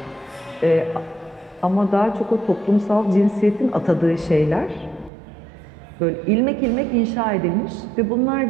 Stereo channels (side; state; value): left; drops out; at 5.1 s